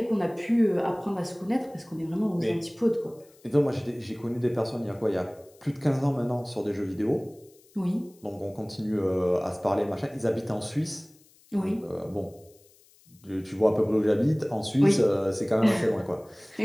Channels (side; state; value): left; noise; hiss, 29 dB below the sound